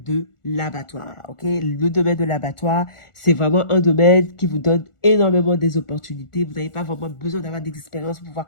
l'abattoir. Ok, le domaine de l'abattoir, c'est vraiment un domaine qui vous donne énormément des opportunités. Vous n'avez pas vraiment besoin d'avoir d'expérience pour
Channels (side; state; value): right; late; 1.4 ms